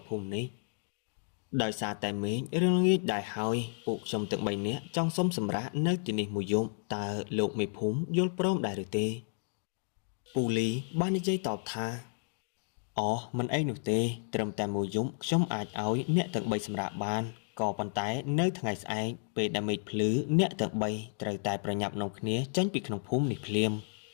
កភូមិនេះដោយសារតែមេឃរឿងល្ងាចដែរហើយពួកខ្ញុំទាំង3នាក់ចង់សុំសម្រាប់នៅទីនេះមួយយប់តើលោកមេភូមិយល់ព្រមដែរឬទេពូលីបាននិយាយតបថាអូមិនអីនោះទេត្រឹមតែមួយយប់ខ្ញុំអាចឲ្យអ្នកទាំង3សម្រាប់បានក៏ប៉ុន្តែនៅថ្ងៃស្អែកពេលដែលមេឃភ្លឺអ្នកទាំង3ត្រូវតែប្រញាប់នាំគ្នាចេញពីក្នុងភូមិនេះភ្លាម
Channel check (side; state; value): right; silent; 56 dB below the other